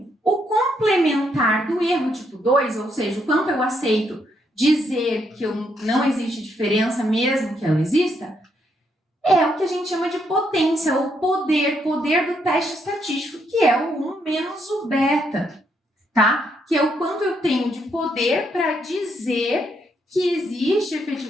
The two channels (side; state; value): both; normal; correlation 0.75